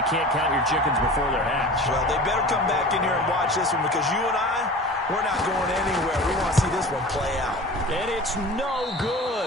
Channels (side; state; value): both; normal; correlation 0.38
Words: can't count your chickens before they're hatched. Well, they better come back in here and watch this one, because you and I, we're not going anywhere. We want to see this one play out. And it's no